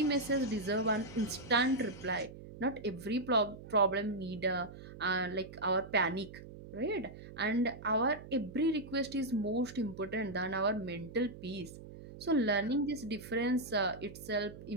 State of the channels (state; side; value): noise; right; hum, 15 dB below the sound